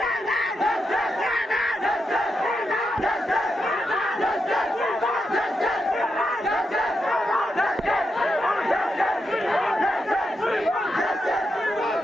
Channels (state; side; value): normal; both; correlation 0.85